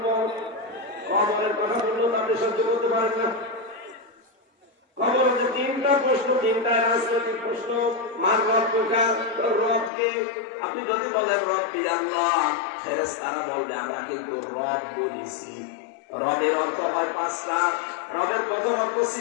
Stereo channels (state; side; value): drops out; right; at 9.9 s